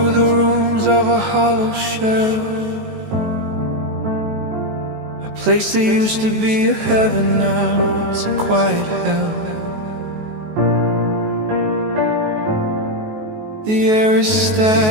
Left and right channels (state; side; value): late; left; 19 ms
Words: the rooms of a hollow shell, a place that used to be a heaven, now it's a quiet hell. The air is